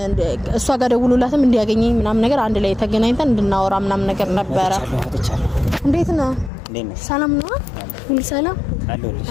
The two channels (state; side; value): drops out; right; at 6.5 s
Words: እሷ ጋር ደውሎላትም እንዲያገኘኝ ምናምን ነገር አንድ ላይ ተገናኝተን እንድናወራ ምናምን ነገር ነበረ። እንዴት ነው? ሰላም ነው? ሁሉ ሰላም አለ